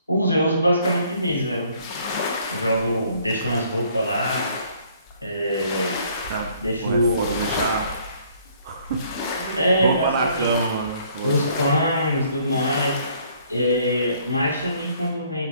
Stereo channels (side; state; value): both; inverted; correlation -0.62